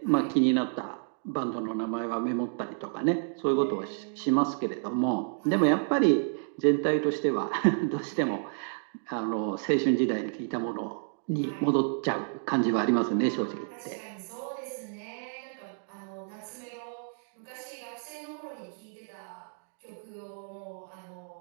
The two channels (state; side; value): silent; left; digital silence